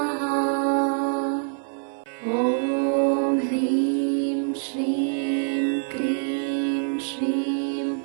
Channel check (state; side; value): silent; left; 61 dB below the other